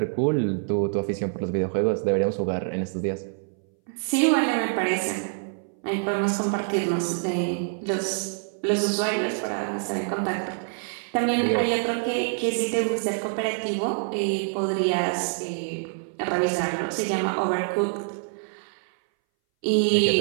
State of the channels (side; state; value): left; silent; 60 dB below the other